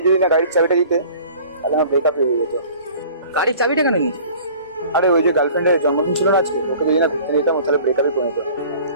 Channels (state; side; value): inverted; both; correlation -0.47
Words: যদি না গাড়ির চাবিটা দিতে তাহলে আমার ব্রেকআপ হয়ে যেত। গাড়ির চাবিটা কেন নিস? আরে ওই যে গার্লফ্রেন্ডের জন্মদিন ছিল না আজকে, ওকে যদি না ঘুরতে নিতাম তাহলে ব্রেকআপে পরিণত।